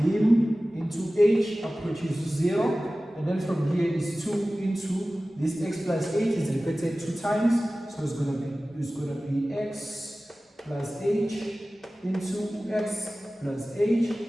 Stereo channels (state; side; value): normal; both; correlation 0.97